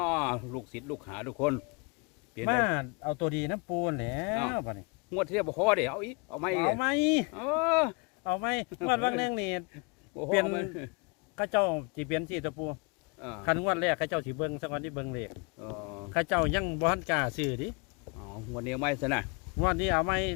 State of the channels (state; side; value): quieter; right; 32.1 dB